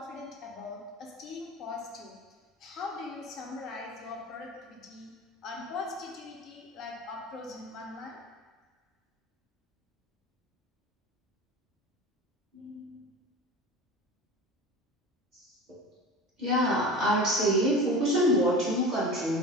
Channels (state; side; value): normal; both; correlation 0.34